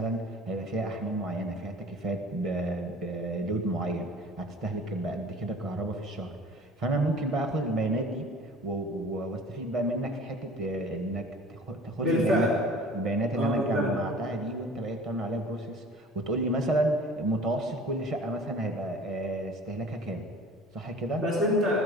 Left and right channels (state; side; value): normal; both; correlation 0.45